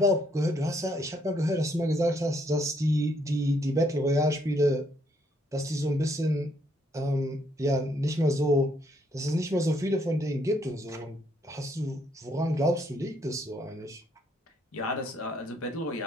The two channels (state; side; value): normal; both; correlation 0.71